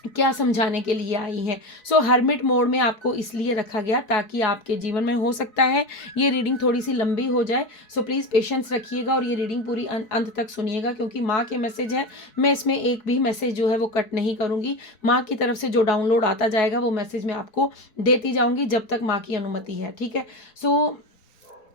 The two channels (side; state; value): right; late; 4.7 ms